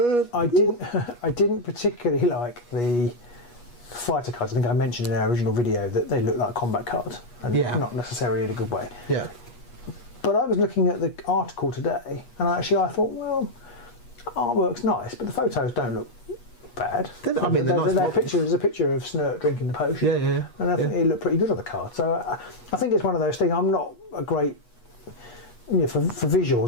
I didn't particularly like the fighter cards. I think I mentioned in our original video that they look like combat cards, and not necessarily in a good way. Yeah. But I was looking at the article today, and I thought, well, artwork's nice, but the photos don't look bad. I mean, there's a picture of Snurt drinking the potion. Yeah. And I think it looked pretty good on the card. So I think it's one of those things. I'm not a great, for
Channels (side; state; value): right; late; 8.3 ms